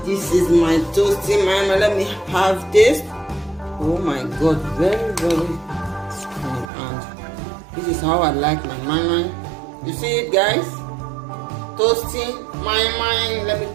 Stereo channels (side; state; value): left; drops out; at 6.7 s